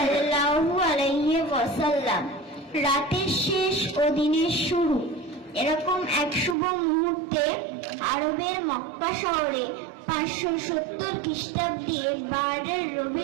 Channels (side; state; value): left; drops out; at 6.6 s